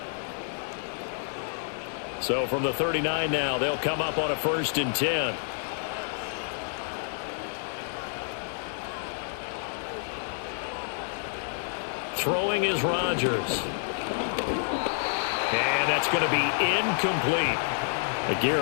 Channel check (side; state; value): right; silent; 59 dB below the other